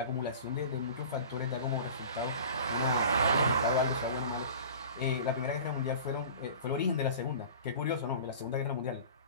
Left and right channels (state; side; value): inverted; both; correlation -0.40